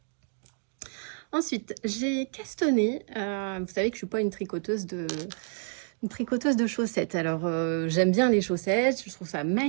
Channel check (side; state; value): left; silent; 59 dB below the other